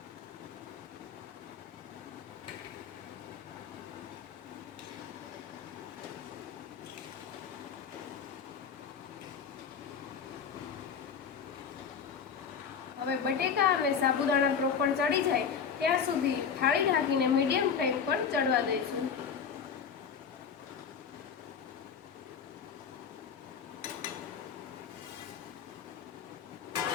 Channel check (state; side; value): quieter; right; 6.7 dB